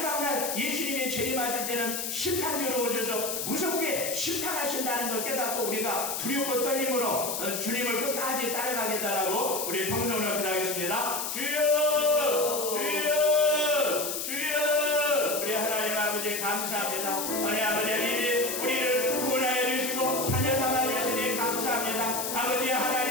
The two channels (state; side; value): noise; left; hiss, 3 dB below the sound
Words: 날 예수님이 재림하실 때는 심판주로 오셔서 무섭게 심판하신다는 걸 깨닫고 우리가 두렵고 떨림으로 주님을 끝까지 따라가겠다라고 우리 성성으로 기도하겠습니다. 주여, 주여, 주여. 우리 하나님 아버지 감사합니다. 우리 아버지 하나님이 우리를 구원하여 주시고 자녀 삼아 주시니 감사합니다. 아버지